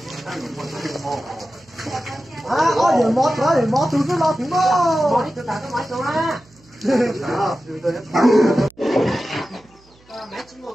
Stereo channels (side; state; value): right; noise; hum, 29 dB below the sound